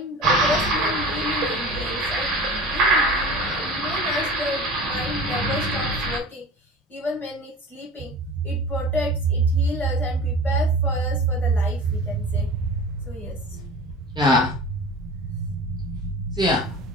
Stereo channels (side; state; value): both; normal; correlation 0.37